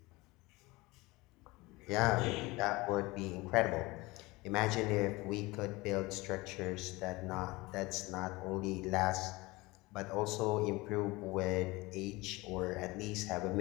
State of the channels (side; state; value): right; quieter; 22.2 dB